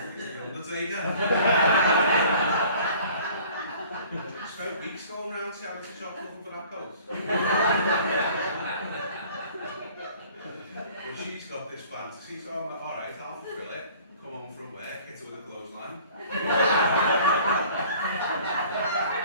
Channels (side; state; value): both; inverted; correlation -0.51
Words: Undertaker. I spent weeks going around charity shops looking for that coat. But she's got this fantasy, so I'm like, "Alright, I'll fulfill it. Come home from work, hit her with a clothesline.